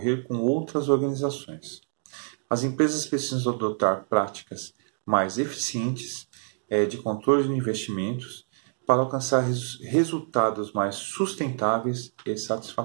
com outras organizações. As empresas precisam adotar práticas mais eficientes de controle de investimentos para alcançar resultados mais sustentáveis e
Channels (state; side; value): silent; left; digital silence